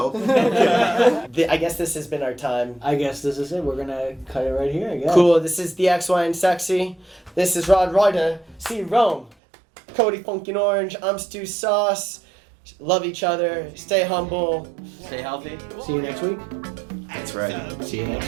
I guess this has been our time. I guess this is it. We're gonna cut it right here. I guess. Cool. This is the XY and Sexy. This is Rod Ryder. See Rome. Cody Funkin' Orange. I'm Stu Sauce. Love each other. Stay humble. Stay healthy. See you next week. That's right. See you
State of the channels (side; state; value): left; drops out; at 9.3 s